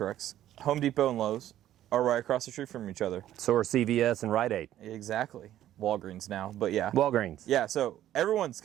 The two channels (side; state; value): left; quieter; 12.5 dB